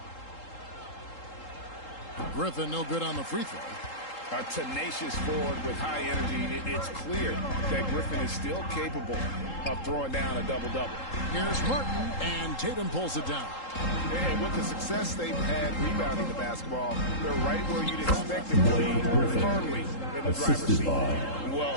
Griffin, no good on the free throw. A tenacious forward with high energy. It's clear that Griffin is still capable of throwing down a double-double. Here's Martin, and Tatum pulls it down. And with the success they've had rebounding the basketball, they're right where you'd expect to play firmly in the driver's seat.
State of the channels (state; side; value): late; right; 3.8 ms